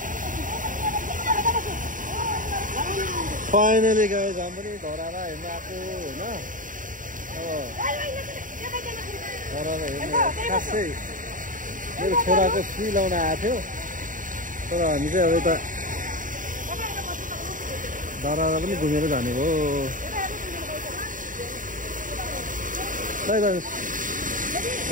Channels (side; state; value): left; late; 0.38 ms